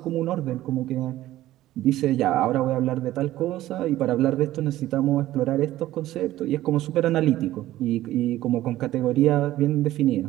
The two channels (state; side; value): quieter; left; 14.9 dB